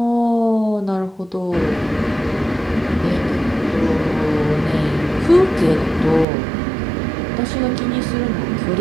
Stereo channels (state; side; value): drops out; left; at 6.2 s